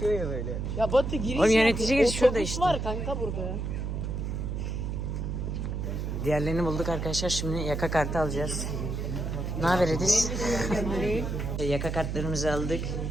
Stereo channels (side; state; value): right; noise; hum, 3 dB below the sound